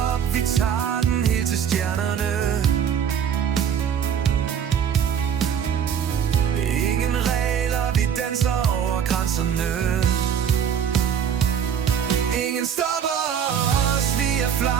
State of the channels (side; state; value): left; quieter; 8.1 dB